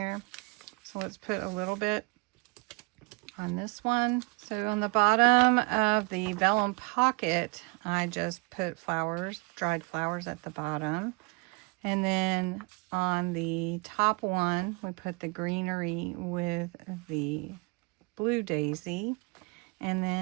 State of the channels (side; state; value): left; quieter; 30.1 dB